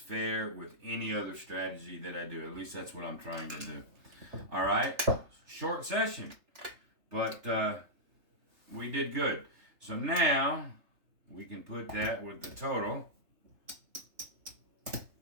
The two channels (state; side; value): late; left; 3.3 ms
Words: with any other strategy that I do. At least that's what I'm trying to do. All right? Short session. But we did good. So now we can put that with the total.